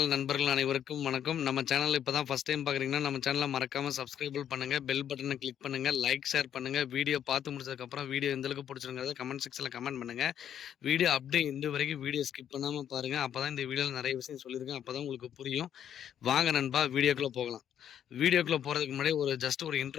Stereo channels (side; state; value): right; quieter; 9.7 dB